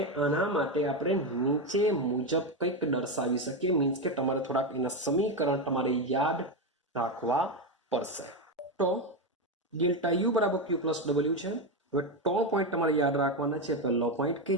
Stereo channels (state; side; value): normal; both; correlation 0.11